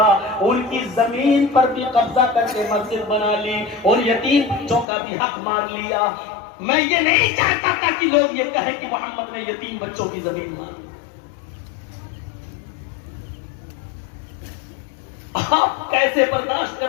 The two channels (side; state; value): right; drops out; at 4.9 s